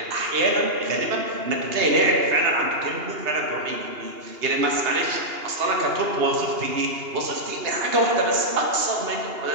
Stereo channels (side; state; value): left; late; 2.8 ms